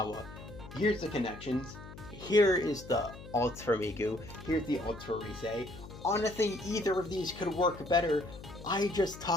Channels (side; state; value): left; noise; hum, 15 dB below the sound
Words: Here's the connections. Here is the ults for Miku. Here's the ults for Ruse. Honestly, either of these could work better. I just